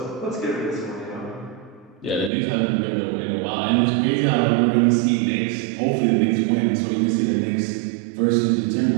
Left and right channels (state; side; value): drops out; left; at 2.3 s